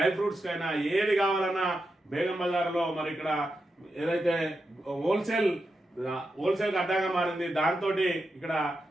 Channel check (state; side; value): normal; both; correlation 0.87